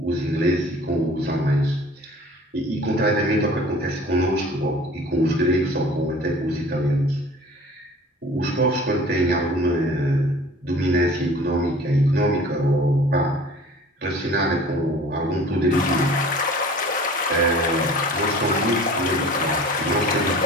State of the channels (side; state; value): both; normal; correlation 0.45